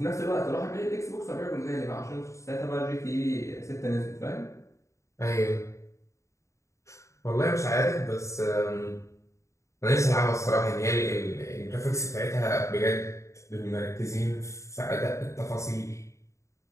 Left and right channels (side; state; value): right; late; 0.14 ms